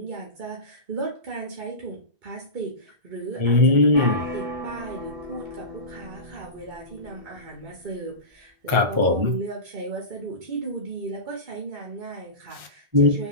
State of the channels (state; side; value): late; left; 1.4 ms